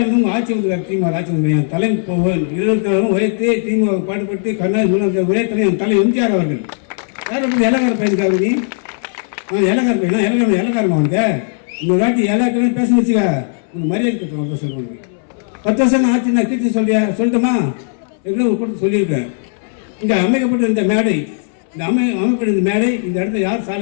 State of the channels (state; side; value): silent; right; 67 dB below the other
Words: உங்கள் ஆட்சி வந்து திமுக ஆட்சி வந்து என் தலை 24 உயர்த்தி திமுக பாடுபட்டு கருணாநிதி ஒரே தலை என் தலை எம்ஜிஆர் அவர்கள். யார் அப்படி இலக்கார பையனுக்காக நீ இலக்கார பையனா இலக்காரமா வந்து இந்த வாட்டி இலக்காரம் பேச வச்சுக்க உங்க மரியாதை கட்டணும் சொல்லுவாங்க. 10 வருஷம் ஆட்சி நான் கீர்த்தி சொல்லட்டுமா எவ்வளோ ஒரு கூட்டத்தை சொல்லியிருக்கேன். இங்கே அமைக்கப்பட்ட இந்த மேடை, இந்த அமைக்கப்பட்ட இந்த மேடை, இந்த இடத்துல யார்